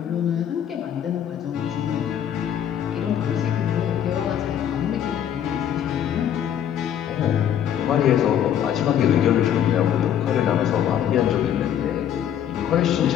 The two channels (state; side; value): quieter; right; 9.8 dB